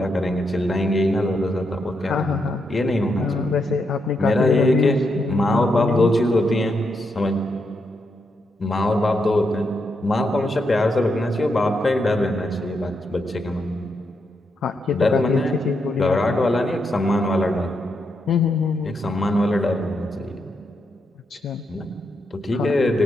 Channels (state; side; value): normal; both; correlation 0.81